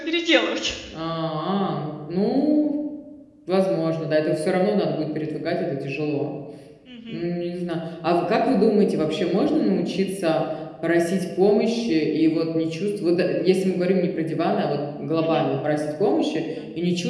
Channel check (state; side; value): identical; both; correlation 1.00